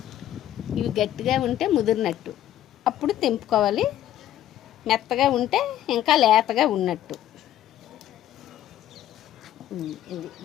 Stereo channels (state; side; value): quieter; right; 12.2 dB